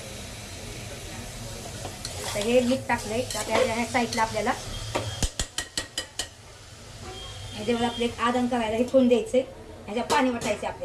आता हे मीठ टाकलंय. आता ह्या साईडला आपल्याला ह्याच्यावर आपले एक आदन करायला हे ठेवून द्यायचे. ह्याच्या पाणी वतायचे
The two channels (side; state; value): both; identical; correlation 1.00